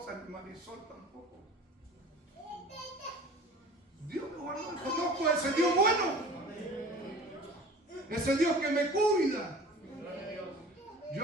ni Marisol tampoco. Dios me guardó. Conozco a ese Dios bueno, ese Dios que me cuida.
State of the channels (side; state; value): both; normal; correlation 0.43